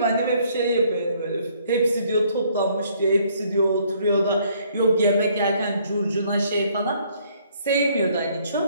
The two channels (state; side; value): inverted; both; correlation -0.64